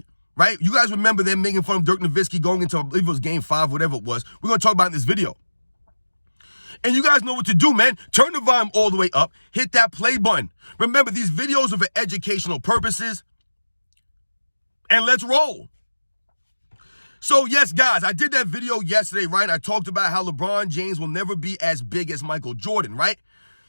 right? You guys remember them making fun of Dirk Nowitzki going into, I believe it was Game 5, whatever it was. We're going to talk about it in this video. And you guys know what to do, man. Turn the volume all the way up. Hit that play button. Remember, these videos are for educational purposes. And let's roll. So, yes, guys, I did that video yesterday, right? I talked about how LeBron James will never be as big as Michael Jordan, right?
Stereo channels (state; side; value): inverted; both; correlation -1.00